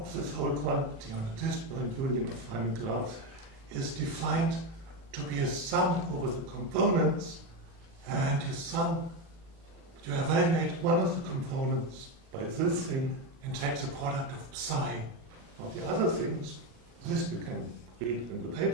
this whole quantity on a disjoint union of Feynman graphs is defined to be a sum over the components, and you evaluate one of the components by this thing and take the product of psi of the other things. This you can read in the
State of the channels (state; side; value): late; left; 36 ms